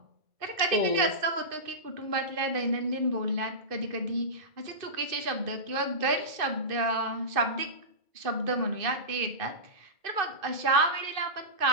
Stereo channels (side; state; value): left; late; 2.5 ms